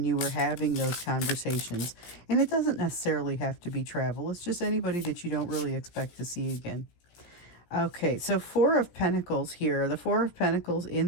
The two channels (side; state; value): right; late; 17 ms